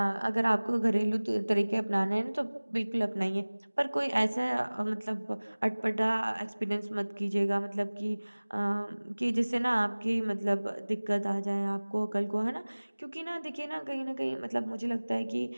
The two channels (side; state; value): both; inverted; correlation -1.00